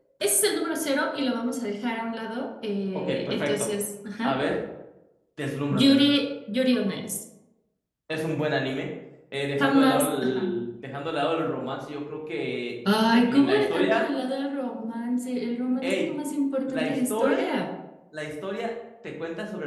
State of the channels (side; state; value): both; identical; correlation 1.00